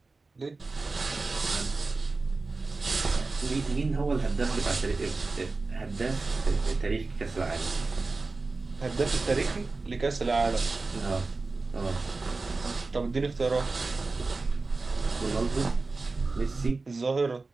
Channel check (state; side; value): quieter; left; 3.7 dB